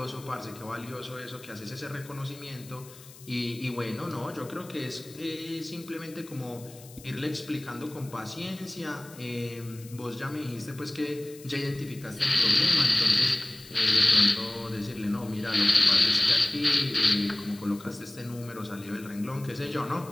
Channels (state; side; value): noise; left; hiss, 20 dB below the sound